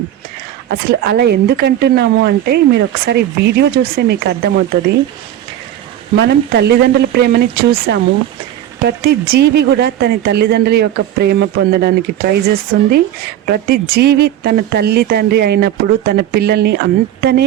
అసలు అలా ఎందుకంటున్నాము అంటే మీరు ఒకసారి వీడియో చూస్తే మీకు అర్థమవుతుంది. మనం తల్లిదండ్రుల ప్రేమని చూసాము. ప్రతి జీవి కూడా తన తల్లిదండ్రుల యొక్క ప్రేమ పొందడానికి ట్రై చేస్తుంది. ప్రతి జీవి తన తల్లి తండ్రి అయినప్పుడు తన పిల్లల్ని అంతనే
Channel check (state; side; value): quieter; left; 11.9 dB